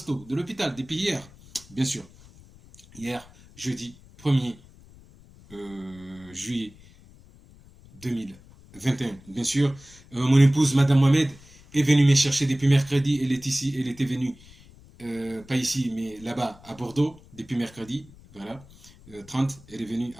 de l'hôpital, depuis hier, bien sûr. Hier, jeudi 1er juillet 2021. Bien sûr, mon épouse, Madame Mohamed, est venue me chercher depuis mercredi. Elle est ici, elle était venue, pas ici, mais là-bas, à Bordeaux, depuis mercredi. Voilà, 30, elle est venue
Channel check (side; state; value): left; noise; rumble, 23 dB below the sound